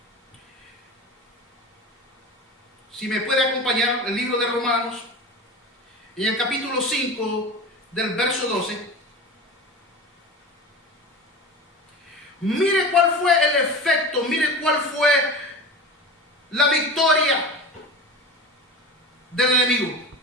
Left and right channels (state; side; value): normal; both; correlation 0.30